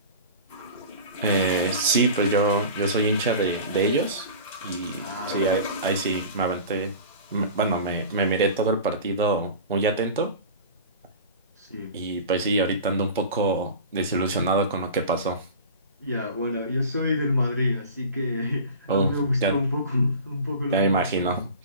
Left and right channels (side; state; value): both; inverted; correlation -0.36